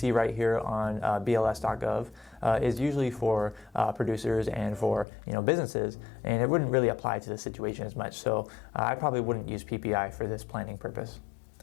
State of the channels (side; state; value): right; drops out; at 5.1 s